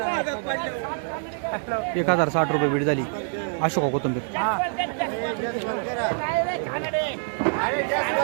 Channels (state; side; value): silent; left; 61 dB below the other